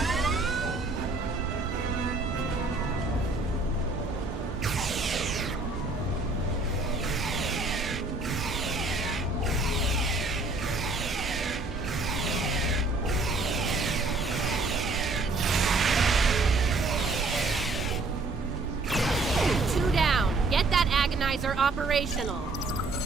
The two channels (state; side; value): quieter; left; 3.3 dB